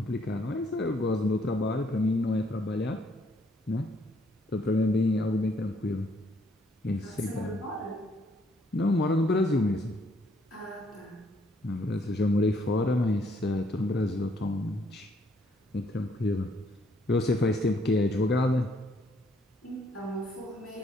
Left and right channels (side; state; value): both; normal; correlation 0.68